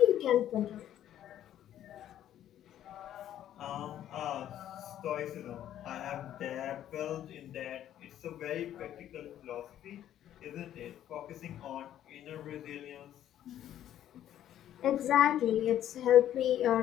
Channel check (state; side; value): quieter; right; 11.5 dB